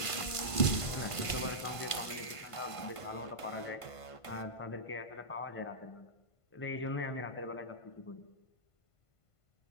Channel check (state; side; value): late; right; 1.5 ms